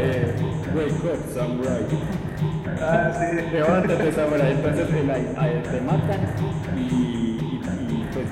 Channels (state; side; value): identical; both; correlation 1.00